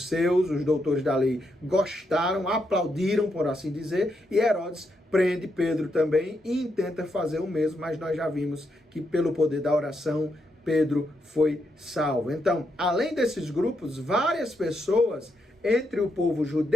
os doutores da lei, gostaram, aplaudiram, por assim dizer, e Herodes prende Pedro também e intenta fazer o mesmo, mas nós já vimos que pelo poder da oração, Pedro foi salvo. Então, além desses grupos, várias pessoas entre o povo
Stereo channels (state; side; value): normal; both; correlation 0.81